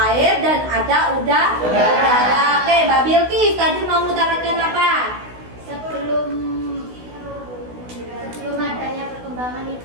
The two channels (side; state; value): left; late; 16 ms